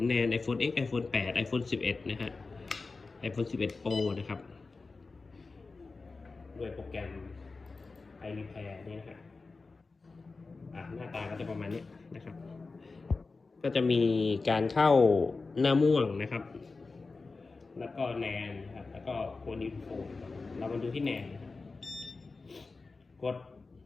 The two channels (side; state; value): right; quieter; 4.0 dB